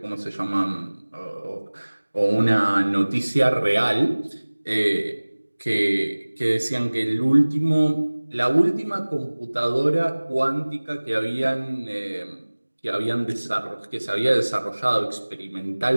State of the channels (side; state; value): both; inverted; correlation -1.00